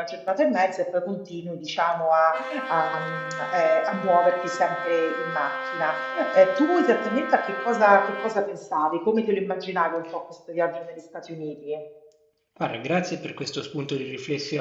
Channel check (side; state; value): both; identical; correlation 1.00